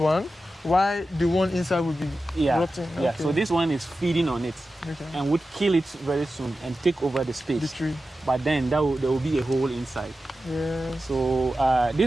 while the one inside will be rotting. Yeah. Okay. So this one is feeding on it, and would kill it very soon and take over the space. The tree. But then there will be a hole inside. Yeah. So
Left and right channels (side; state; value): both; normal; correlation 0.93